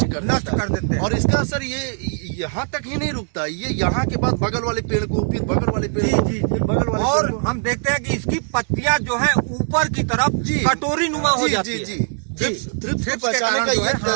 कर देते हैं। और इसका असर ये यहाँ तक ही नहीं रुकता, ये यहाँ के बाद बगल वाले पेड़ को, फिर बगल वाले पेड़ को, फिर बगल वाले और पेड़ को। हम देखते हैं कि इसकी पत्तियां जो है ऊपर की तरफ कटोरी नुमा हो जाती है। थ्रिप्स के कारण जो है,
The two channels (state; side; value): silent; left; 55 dB below the other